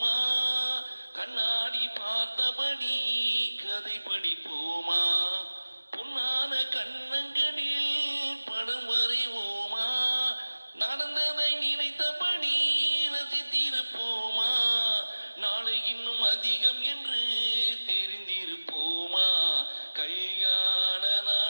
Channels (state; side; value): inverted; both; correlation -1.00